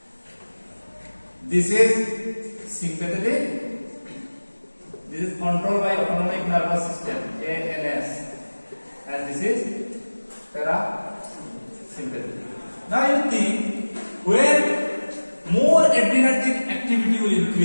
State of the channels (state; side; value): inverted; both; correlation -1.00